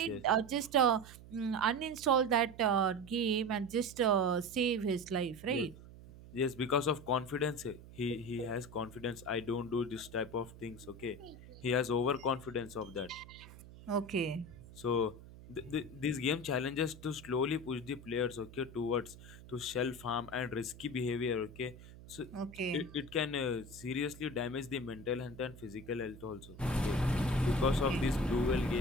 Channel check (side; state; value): right; noise; hum, 18 dB below the sound